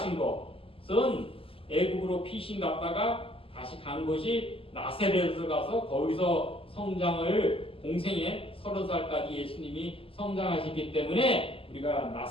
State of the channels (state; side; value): late; right; 0.26 ms